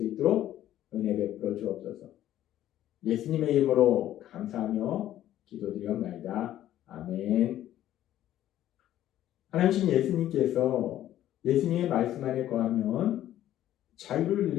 있도록 은혜 베풀어 주옵소서. 예수님의 이름으로 감사하며 기도드리옵나이다. 아멘. 하나님 예수님께서 예수님의 말씀 안에 거하면 자유를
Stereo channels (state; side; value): quieter; right; 12.6 dB